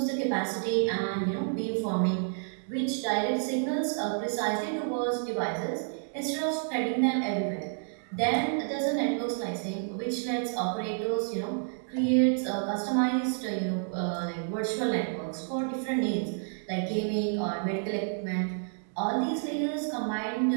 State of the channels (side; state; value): left; silent; 58 dB below the other